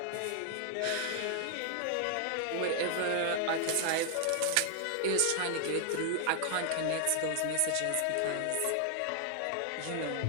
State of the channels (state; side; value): different; both; correlation 0.00